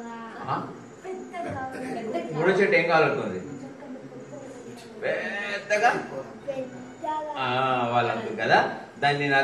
మూడో చెట్టు ఏం కావాలనుకుంది? పెద్దగా వాళ్ళు అనుకుంది కదా. దాన్ని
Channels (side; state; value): both; identical; correlation 1.00